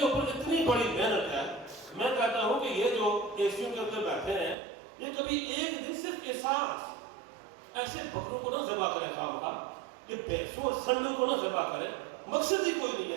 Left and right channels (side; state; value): left; drops out; at 4.5 s